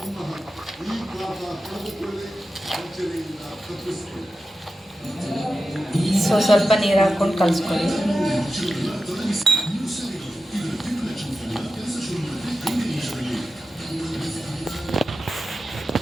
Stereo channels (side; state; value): both; normal; correlation 0.92